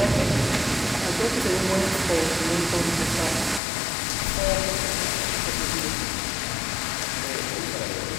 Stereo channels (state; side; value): drops out; right; at 3.6 s